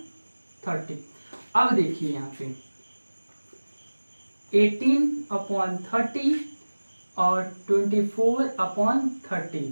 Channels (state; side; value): inverted; both; correlation -1.00